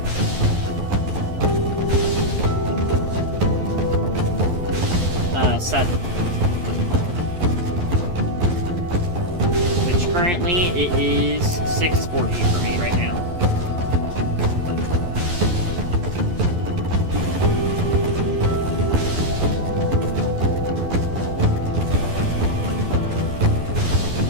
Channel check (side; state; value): left; late; 11 ms